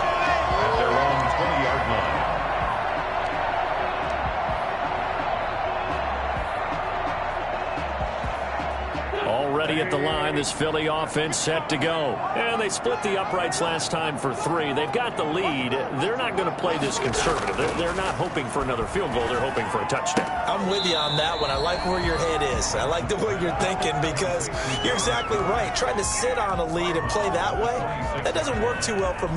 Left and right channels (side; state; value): both; identical; correlation 1.00